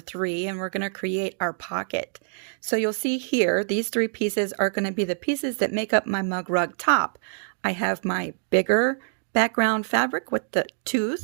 and we're going to create our pocket. So you'll see here, these 3 pieces are going to be the pieces that make up my mug rug top. I have my bigger background fabric with the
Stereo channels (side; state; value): left; silent; digital silence